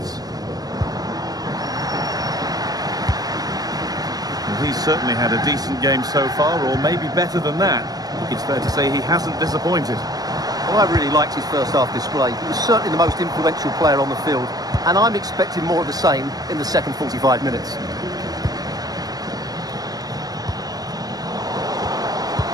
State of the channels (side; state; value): left; late; 0.19 ms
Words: Well, he's certainly had a decent game so far, or maybe better than that. I think it's fair to say he hasn't disappointed. Well, I really liked his first half display. He was certainly the most influential player on the field, and I'm expecting more of the same in the second 45 minutes.